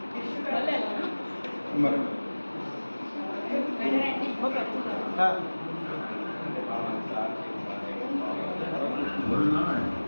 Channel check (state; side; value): inverted; both; correlation -1.00